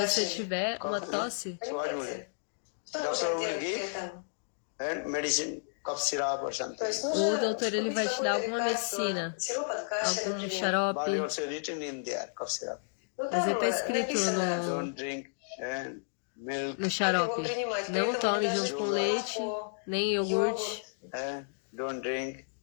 tiver uma tosse, o doutor ele vai te dar alguma medicina, algum xarope, mas está escrito no xarope: não tome junto com leite, nem iogurte,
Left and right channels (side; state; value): right; silent; digital silence